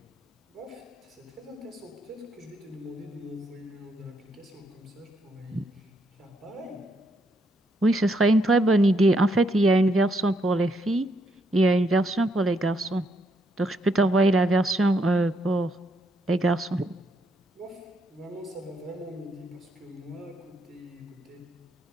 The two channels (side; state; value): both; normal; correlation 0.75